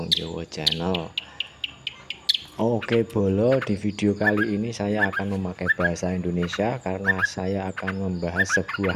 Jawa Channel. Oke bolo, di video kali ini saya akan memakai bahasa Indonesia karena saya akan membahas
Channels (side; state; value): both; identical; correlation 1.00